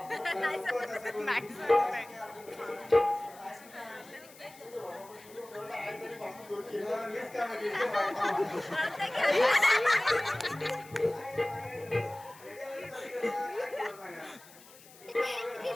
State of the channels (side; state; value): left; noise; hiss, 22 dB below the sound